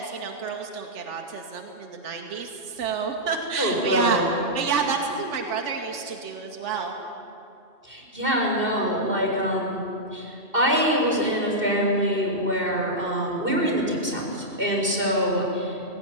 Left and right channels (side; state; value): left; late; 2.7 ms